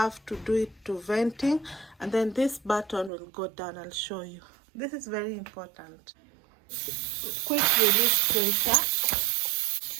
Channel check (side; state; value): left; drops out; at 3.1 s